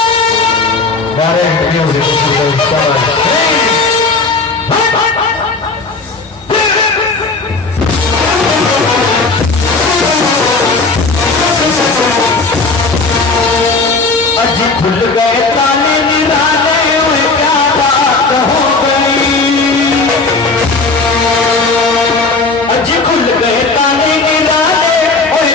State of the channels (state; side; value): quieter; right; 3.8 dB